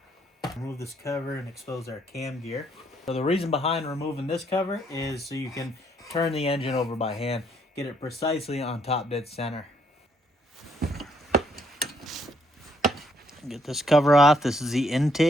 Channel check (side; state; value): both; normal; correlation 0.70